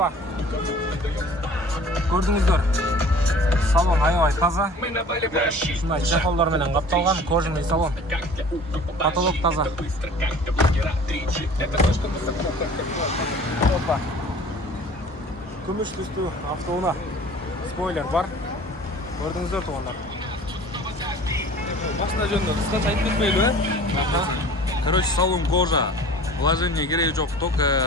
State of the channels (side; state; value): both; normal; correlation 0.46